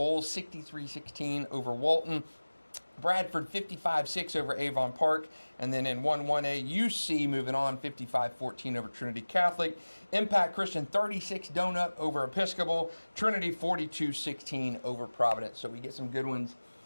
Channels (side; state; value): both; inverted; correlation -1.00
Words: 63-16 over Walton. Bradford 55-6 over Avon Park. And then in 1-1A, UC moving on 55-14 over Trinity Catholic. Impact Christian 36 donut over Episcopal. Trinity 42-16 over Providence. So we get some good ones